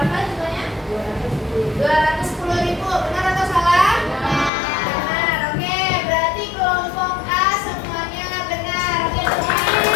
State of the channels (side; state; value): right; drops out; at 4.5 s